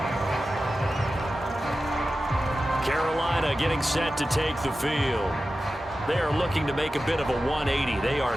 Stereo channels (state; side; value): normal; both; correlation 0.93